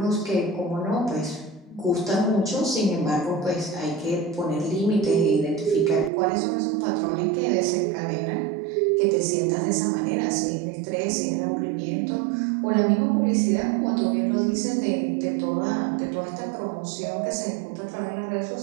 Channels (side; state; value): left; drops out; at 6.1 s